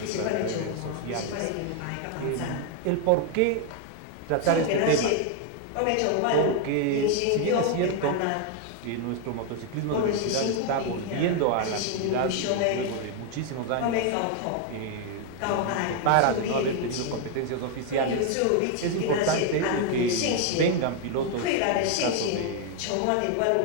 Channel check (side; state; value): both; different; correlation 0.00